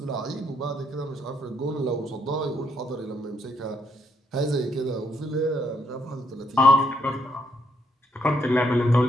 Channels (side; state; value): both; normal; correlation 0.74